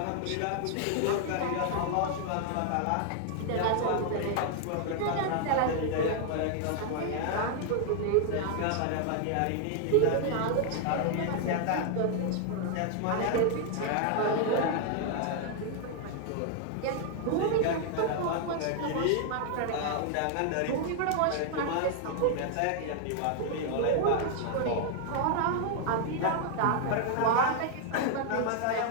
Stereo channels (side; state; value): both; different; correlation 0.00